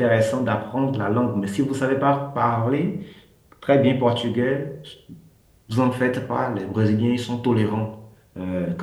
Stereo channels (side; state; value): both; identical; correlation 1.00